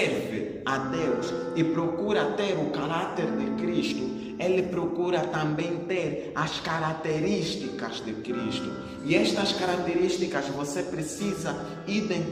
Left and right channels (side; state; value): both; identical; correlation 1.00